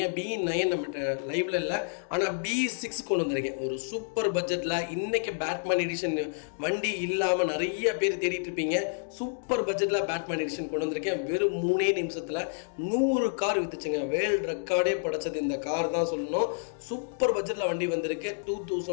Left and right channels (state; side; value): silent; right; digital silence